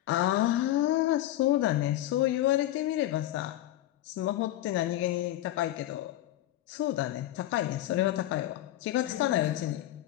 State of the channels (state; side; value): quieter; right; 14.3 dB